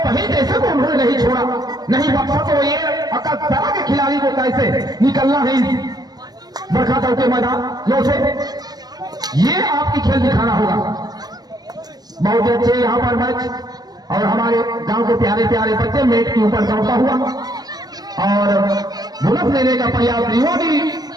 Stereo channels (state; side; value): late; left; 0.19 ms